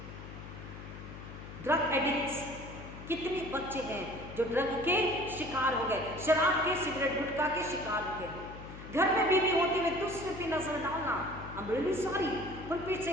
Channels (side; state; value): left; noise; hum, 12 dB below the sound